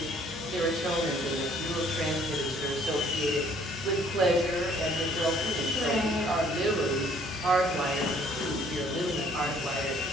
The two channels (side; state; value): both; normal; correlation 0.60